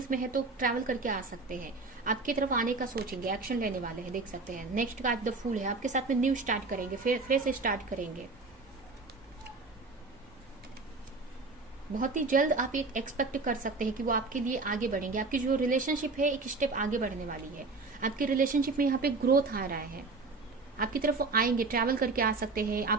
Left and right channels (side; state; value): left; quieter; 3.8 dB